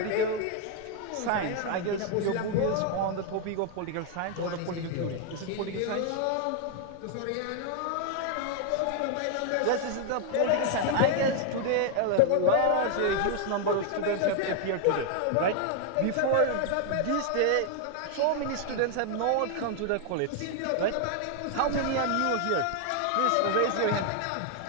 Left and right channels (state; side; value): different; both; correlation 0.00